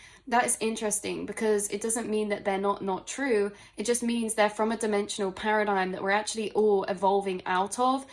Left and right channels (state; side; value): identical; both; correlation 1.00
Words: that is interesting, because it doesn't mean that they're not true. It just means they're from a dimensional paradigm that we're actually all evolving out of.